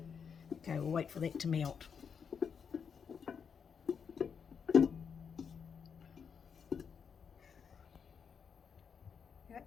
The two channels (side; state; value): right; quieter; 6.6 dB